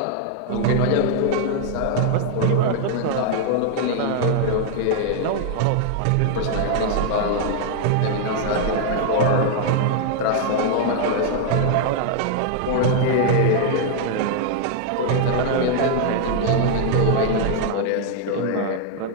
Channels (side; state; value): both; different; correlation 0.00